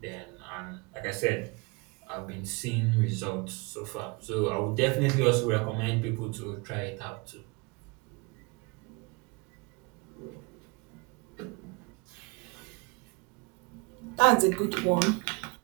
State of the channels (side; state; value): left; quieter; 29.0 dB